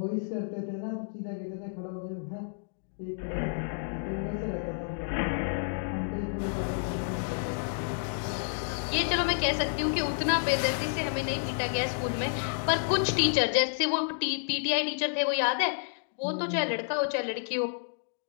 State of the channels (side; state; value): right; silent; digital silence